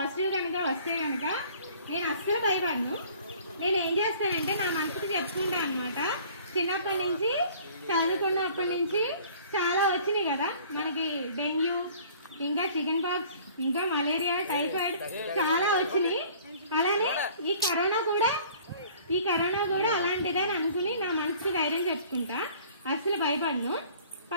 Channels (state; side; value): inverted; both; correlation -0.52